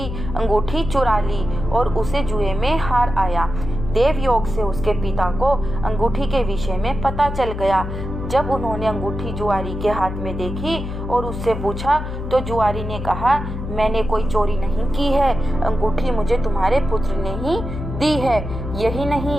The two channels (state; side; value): noise; left; hum, 6 dB below the sound